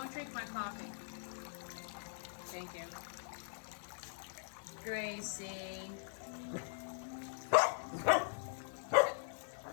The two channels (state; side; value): silent; right; digital silence